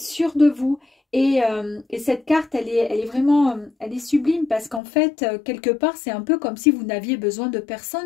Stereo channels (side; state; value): right; drops out; at 4.8 s